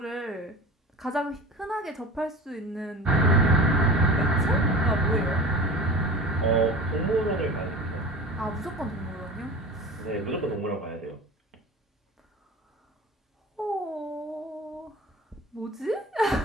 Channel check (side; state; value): both; normal; correlation 0.36